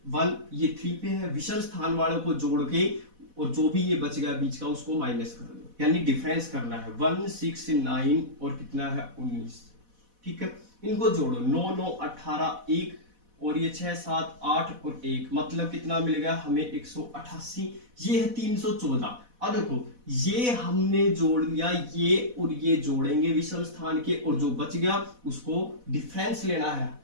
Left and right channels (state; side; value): late; left; 4.1 ms